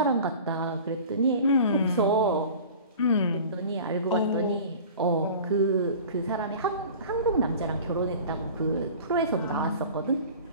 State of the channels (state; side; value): inverted; both; correlation -0.40